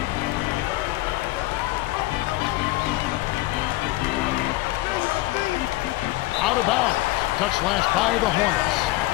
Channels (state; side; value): quieter; right; 18.3 dB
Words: Out of bounds. Touch last by the Hornets.